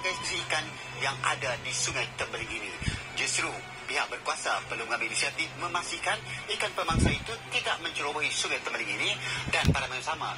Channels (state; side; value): identical; both; correlation 1.00